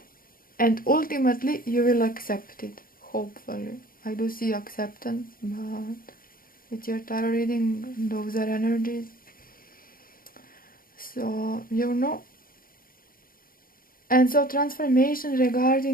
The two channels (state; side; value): late; right; 0.42 ms